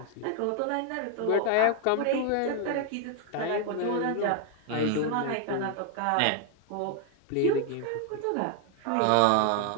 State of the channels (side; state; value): both; different; correlation 0.00